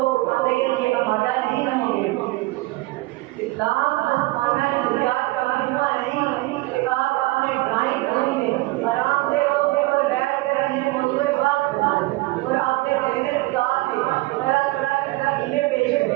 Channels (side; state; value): left; quieter; 21.2 dB